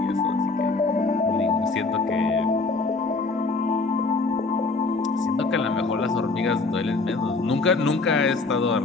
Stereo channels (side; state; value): right; quieter; 3.7 dB